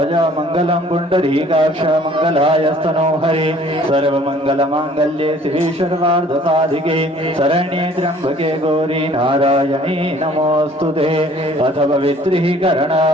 मंगलम पुंडरीकाक्ष मंगलायस्तनो हरे सर्वमंगल मांगल्ये शिवे सर्वार्थ साधिके शरण्ये त्र्यंबके गौरी नारायणी नमोस्तुते। अथ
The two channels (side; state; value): both; normal; correlation 0.55